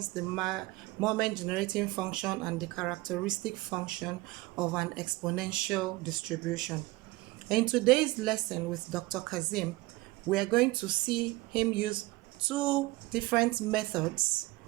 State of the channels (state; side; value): quieter; left; 20.9 dB